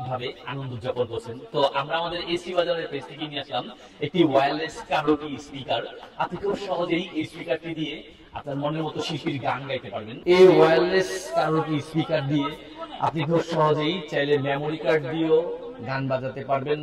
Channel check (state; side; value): identical; both; correlation 1.00